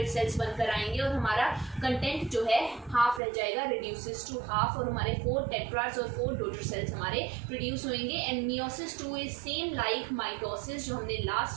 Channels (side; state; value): left; drops out; at 3.2 s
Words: सेल्स बनकर आएंगे और हमारा कंटेंट जो है हाफ रह जाएगा, रिड्यूसेस टू हाफ, और हमारे 4 टेट्राड्स और 4 डॉटर सेल्स हमारे प्रोड्यूस होंगे। And meiosis 2 is same like mitosis जो हमने